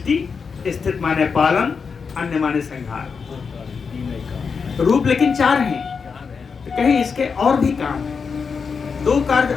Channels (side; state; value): right; quieter; 5.6 dB